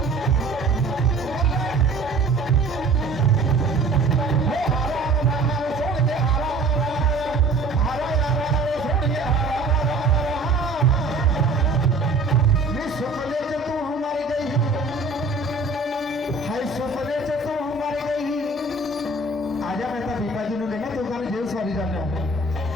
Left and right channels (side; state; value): left; quieter; 3.3 dB